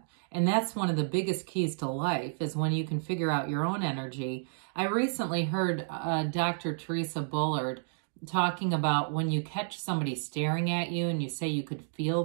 And that's one of the biggest keys to life, is when you can figure out your own energy. I recently heard Dr. Teresa Bullard talking about when you catch somebody staring at you and you say you could feel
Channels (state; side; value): silent; left; digital silence